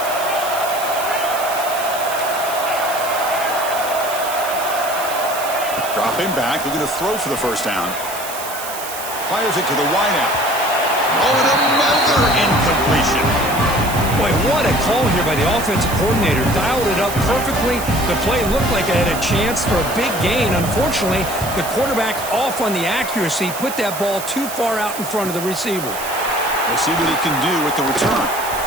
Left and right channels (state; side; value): noise; right; hiss, 9 dB below the sound